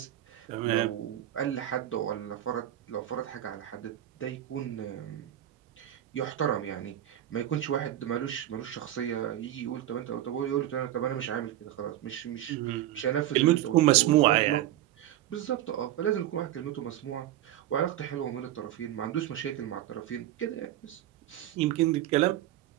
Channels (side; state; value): left; quieter; 12.9 dB